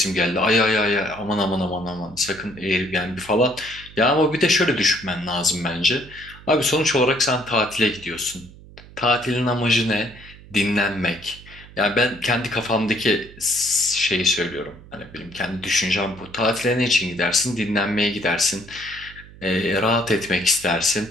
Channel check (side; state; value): right; noise; hum, 20 dB below the sound